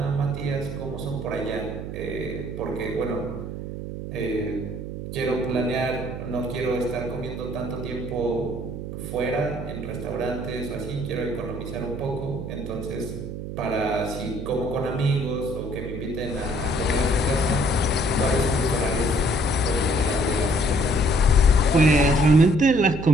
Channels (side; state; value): right; noise; hum, 7 dB below the sound